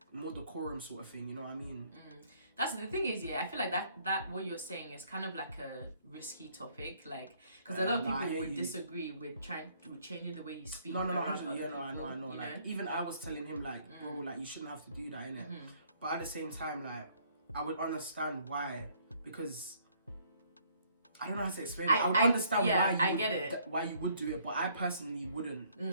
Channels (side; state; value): both; inverted; correlation -0.64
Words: more decorum sort of thing, you know what I mean? That's the thing is, I feel like that what you're saying is kind of like a risky topic, like, because a lot of people would disagree with changing the way you speak. No, I know. Like, even I was telling him like, bro, like, you shouldn't have to do that, innit? But at the same time, like, I would understand why, because I don't know how to explain it. I would understand why you would do it, but I personally wouldn't.